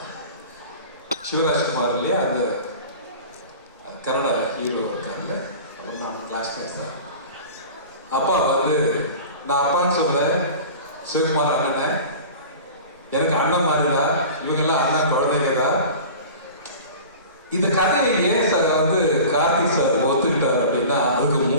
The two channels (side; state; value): both; inverted; correlation -0.38